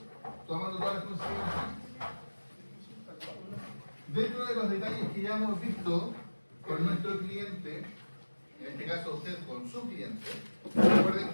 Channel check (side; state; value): both; inverted; correlation -1.00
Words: tomando todas las consideraciones. Dentro de los detalles que ya hemos visto con nuestro cliente, en este caso usted con su cliente, recuerden